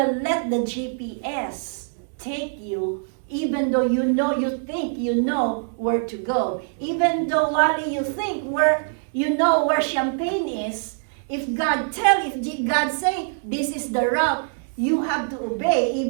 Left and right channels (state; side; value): silent; left; digital silence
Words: let the GPS take you Even though you think you know where to go. Even though, Wally, you think you know where Champagne is, if God say, this is the route, you have to obey,